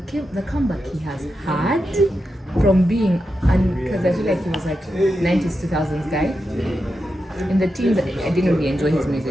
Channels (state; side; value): normal; both; correlation 0.88